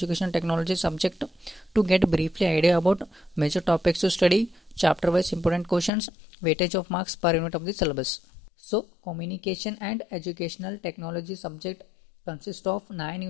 technology subject to get briefly idea about major topics to study, chapter wise important questions, weightage of marks per unit of the syllabus. So communication and educational technology subject consists of 9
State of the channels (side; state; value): right; drops out; at 5.9 s